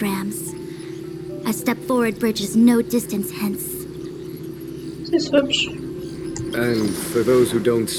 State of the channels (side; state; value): both; identical; correlation 1.00